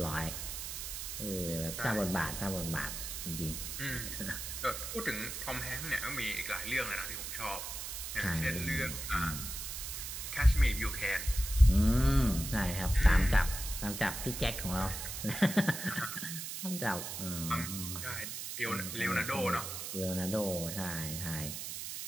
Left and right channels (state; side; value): noise; right; hiss, 6 dB below the sound